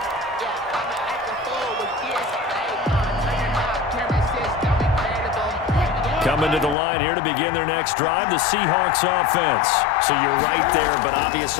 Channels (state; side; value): drops out; right; at 6.8 s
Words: Coming to the line here to begin their next drive, the Seahawks offense. So you're right there, but